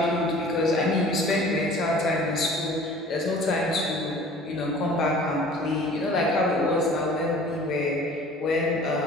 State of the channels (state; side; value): normal; both; correlation 0.47